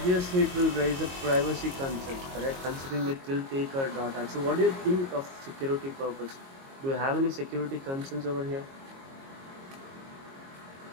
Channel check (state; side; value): late; left; 22 ms